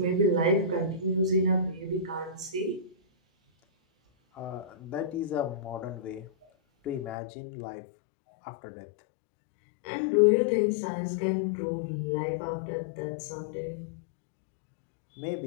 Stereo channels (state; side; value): drops out; right; at 7.2 s